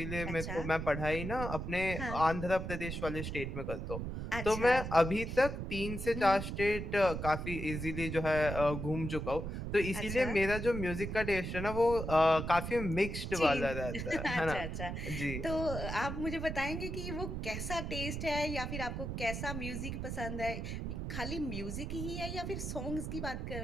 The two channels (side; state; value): right; noise; rumble, 5 dB below the sound